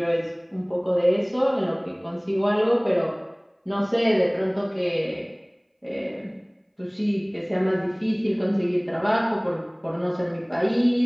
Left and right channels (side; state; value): both; identical; correlation 1.00